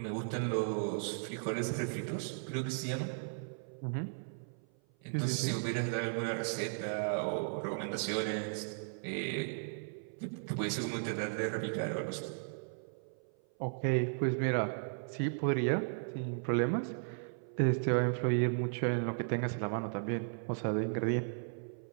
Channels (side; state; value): left; silent; 54 dB below the other